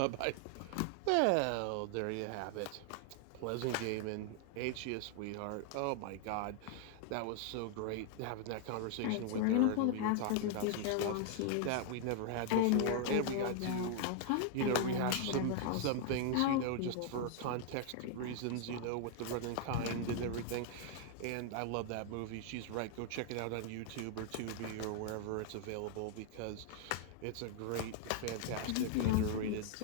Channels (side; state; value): both; different; correlation 0.00